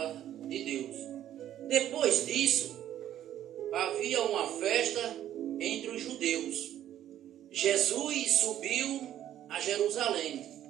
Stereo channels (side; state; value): left; quieter; 11.6 dB